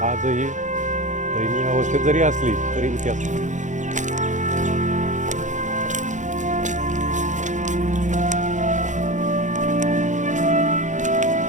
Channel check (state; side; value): late; left; 0.35 ms